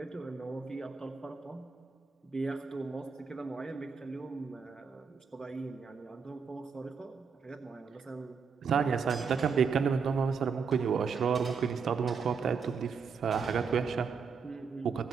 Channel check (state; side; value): quieter; left; 5.7 dB